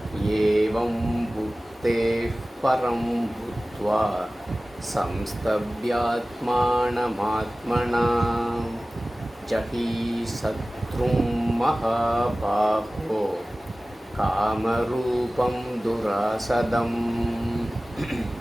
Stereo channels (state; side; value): normal; both; correlation 0.97